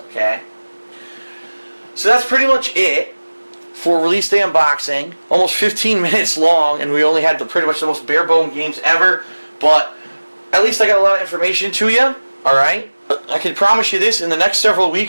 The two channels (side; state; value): both; inverted; correlation -1.00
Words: okay? So that's pretty much it for release day unboxing. Almost 15 minutes long, and we only had pretty much the most bare bone games ever, but at least I got a lot of information to you, alright? I can promise you this, in the next several